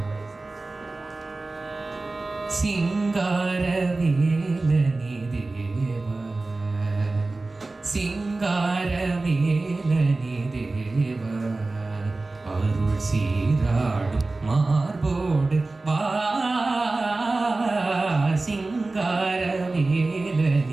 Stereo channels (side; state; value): left; quieter; 3.3 dB